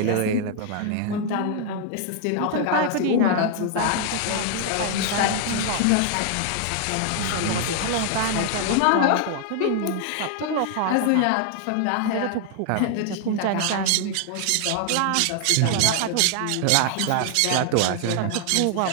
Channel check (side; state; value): both; different; correlation 0.00